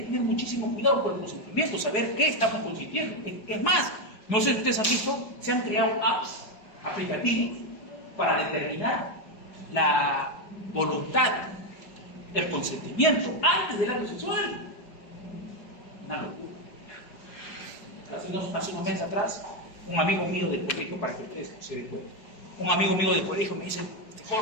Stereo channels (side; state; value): right; late; 4.7 ms